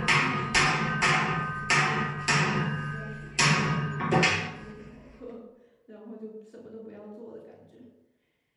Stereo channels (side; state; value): both; identical; correlation 1.00